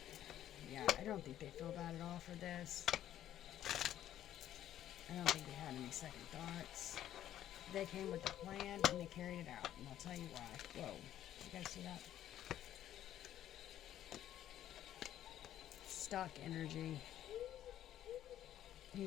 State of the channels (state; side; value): quieter; right; 11.8 dB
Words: Yeah, I don't think they feel bad at all for this. I don't think they had any second thoughts. They came with a plan and they carried it out, and I'll tell you why. Whoa, you guys see that? Stock energy. Here